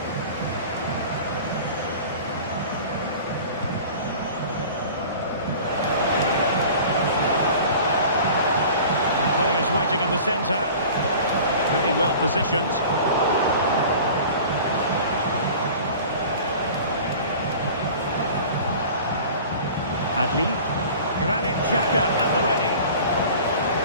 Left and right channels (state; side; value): inverted; both; correlation -0.41